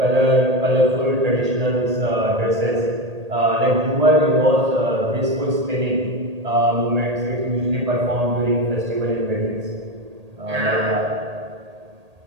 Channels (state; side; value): late; left; 1.8 ms